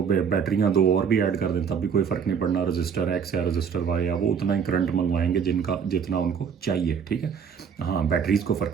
बैटरियाँ दो और भी ऐड कर दें तब भी कोई फ़र्क नहीं पड़ना, रजिस्टर एक्स या रजिस्टर वाई या वो उतना ही करंट मंगवाएंगे जितना उनको चाहिए, ठीक है। हाँ बैटरीज़ को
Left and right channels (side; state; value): left; quieter; 7.0 dB